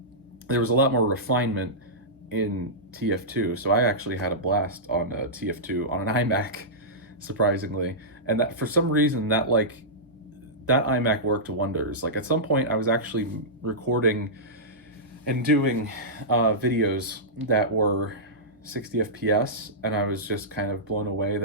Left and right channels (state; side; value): normal; both; correlation -0.14